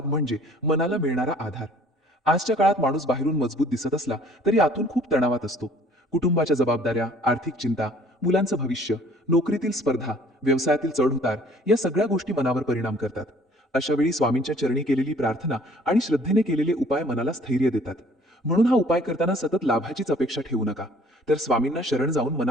म्हणजे मनाला मिळणारा आधार. आजच्या काळात माणूस बाहेरून मजबूत दिसत असला तरी आतून खूप तणावात असतो. कुटुंबाच्या जबाबदाऱ्या, आर्थिक चिंता, मुलांचं भविष्य, नोकरीतील स्पर्धा, व्यवसायातील चढउतार या सगळ्या गोष्टी मनावर परिणाम करतात. अशा वेळी स्वामींच्या चरणी केलेली प्रार्थना आणि श्रद्धेने केलेले उपाय मनाला स्थैर्य देतात. म्हणून हा उपाय करताना सतत लाभाचीच अपेक्षा ठेवू नका, तर स्वामींना शरण जाऊन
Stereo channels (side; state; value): both; normal; correlation 0.56